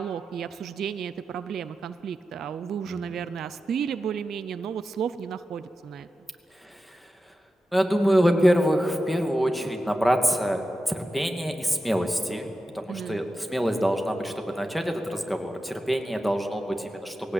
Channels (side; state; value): both; normal; correlation 0.92